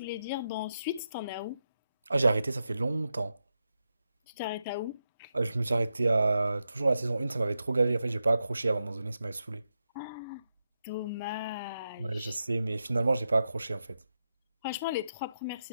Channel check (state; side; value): inverted; both; correlation -0.87